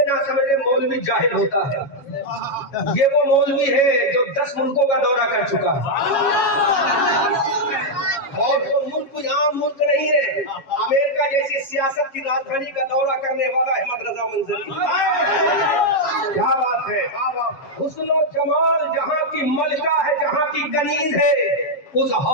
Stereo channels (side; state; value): right; late; 7.3 ms